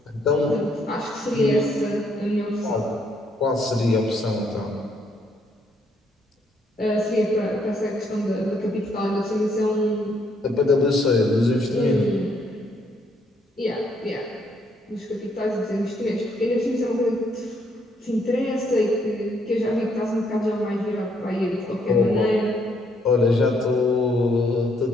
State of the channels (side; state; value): both; normal; correlation 0.71